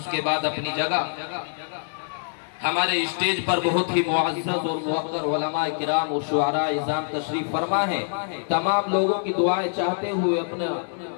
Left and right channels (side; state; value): right; silent; digital silence